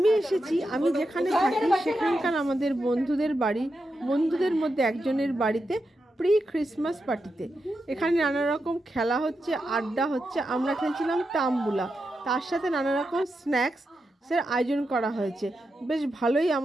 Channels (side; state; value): both; normal; correlation 0.87